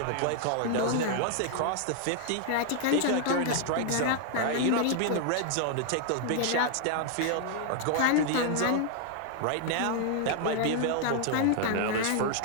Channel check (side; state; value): both; different; correlation 0.00